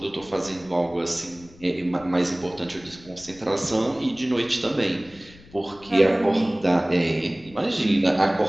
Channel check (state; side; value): noise; left; rumble, 23 dB below the sound